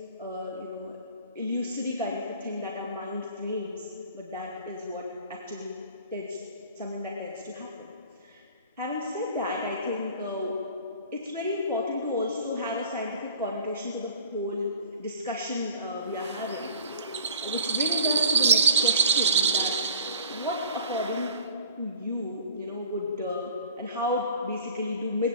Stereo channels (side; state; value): both; inverted; correlation -0.47